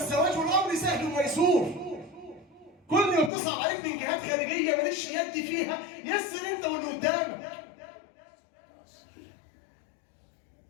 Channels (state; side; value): drops out; right; at 3.3 s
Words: والامر سهل وميسور. كل ما بتصعب عليك من جهات خارجيه مالكش يد فيها، يسر انت واللي قدامك.